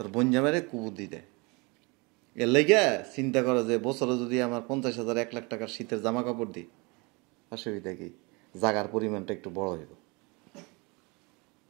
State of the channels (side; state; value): left; quieter; 28.2 dB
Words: বোন জামাইরে কুবুদ্ধি দেয়। এর লেগে চিন্তা করো যে বছরে যদি আমার 50,000 1 লাখ টাকার শীতের জামা কাপড় দিই, অসুবিধা কি? জাগার পরিমাণটা একটু বড় হইব।